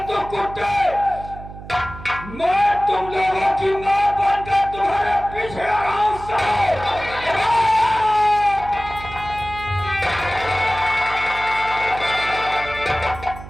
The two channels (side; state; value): right; noise; hum, 14 dB below the sound